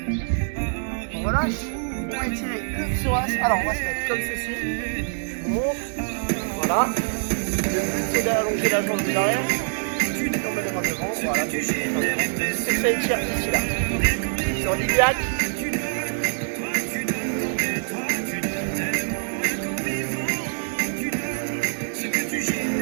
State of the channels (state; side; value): silent; left; digital silence